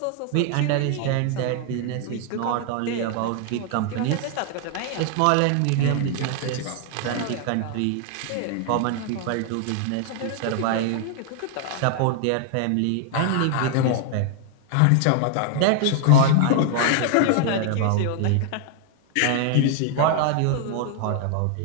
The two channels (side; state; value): both; different; correlation 0.00